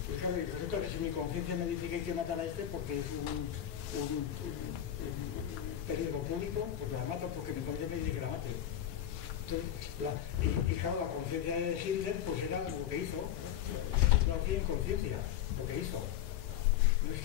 y claro, y resulta que si mi conciencia me dice que hay que matar a este porque es un peligro público, pues la mato porque mi conciencia me dice que la mate. Entonces, y claro, la conciencia de Hitler pues era lo que hizo, no hacía inconsciencia, lo que hizo. No es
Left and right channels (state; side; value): quieter; right; 10.6 dB